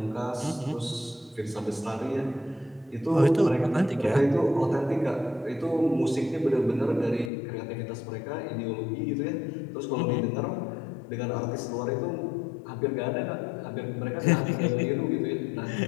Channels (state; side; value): drops out; right; at 7.3 s